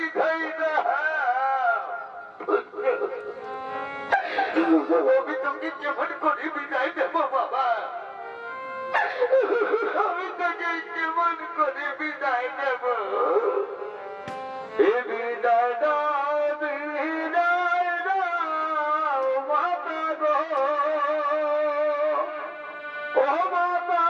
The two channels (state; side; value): identical; both; correlation 1.00